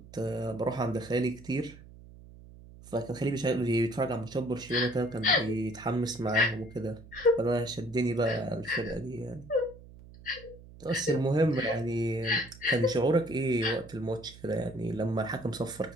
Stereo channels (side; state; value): right; noise; hum, 19 dB below the sound